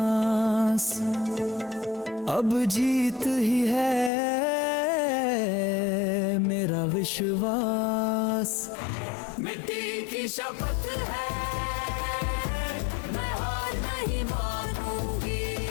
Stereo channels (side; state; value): right; drops out; at 4.1 s